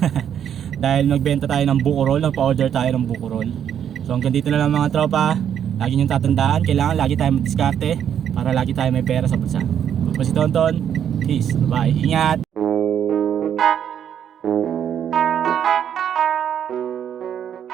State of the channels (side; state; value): left; quieter; 9.1 dB